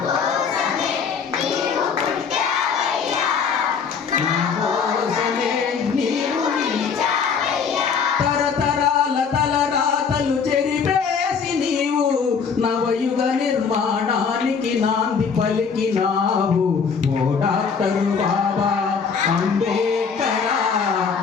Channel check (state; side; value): quieter; right; 6.1 dB